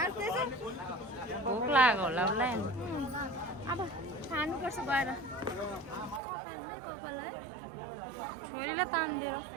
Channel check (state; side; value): drops out; left; at 6.2 s